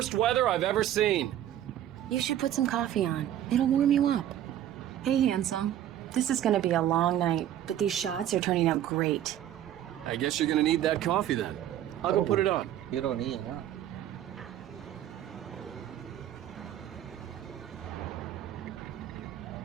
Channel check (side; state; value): left; quieter; 11.6 dB